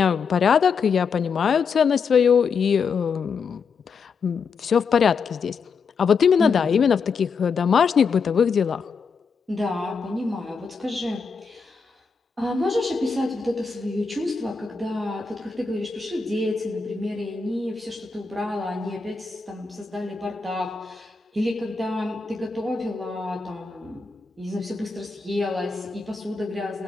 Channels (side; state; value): right; quieter; 5.3 dB